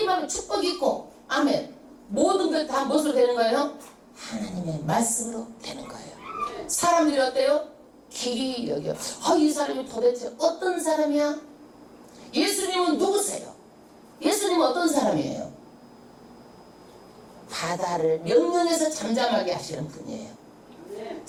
많으면 축복이 있고 아멘. 모든 것 다 무엇으로 되는 거예요? 하나님의 말씀으로 되는 거예요. 사람들이 어때요? 길이 여겨. 이 사람이 도대체 어떤 사람이야? 예수님은 누구세요? 예수님은 어떤 사람이에요? 바다를 명령해서 잠잠하게 하시는 분이에요.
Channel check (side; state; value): both; identical; correlation 1.00